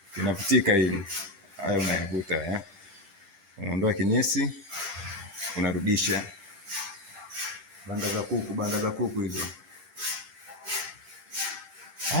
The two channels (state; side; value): late; left; 10 ms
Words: Inapitika hili. Haya unayavuta unaondoa kinyesi, unarudisha. Banda za kuku hizo.